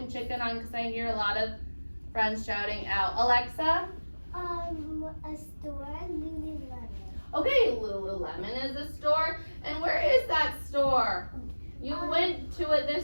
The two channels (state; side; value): inverted; both; correlation -1.00